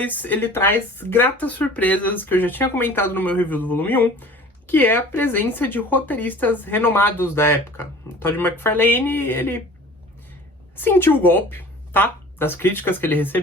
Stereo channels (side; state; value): both; normal; correlation 0.45